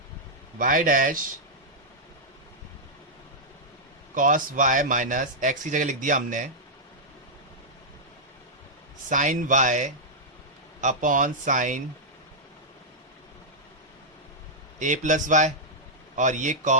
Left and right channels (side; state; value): both; normal; correlation -0.07